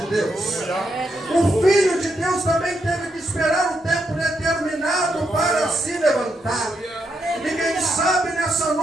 Deus. O Filho de Deus também teve que esperar o tempo determinado para se levantar. E quem sabe nessa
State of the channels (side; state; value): both; normal; correlation 0.81